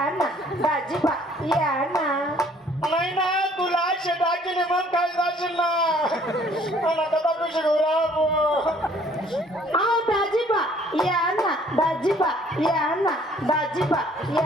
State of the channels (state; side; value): normal; both; correlation 0.59